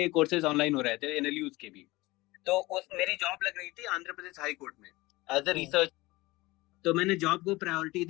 कोर्सेज ऑनलाइन हो रहे थे, एनएलयूज के भी। तो मेरी जॉब लग रही थी आंध्र प्रदेश हाई कोर्ट में एज अ रिसर्च। तो मैंने जॉब को प्रायोरिटी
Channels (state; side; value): quieter; right; 20.9 dB